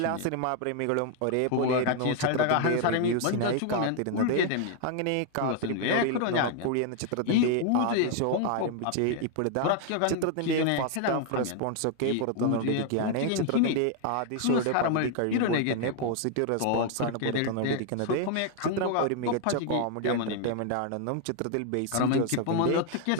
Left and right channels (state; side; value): different; both; correlation 0.00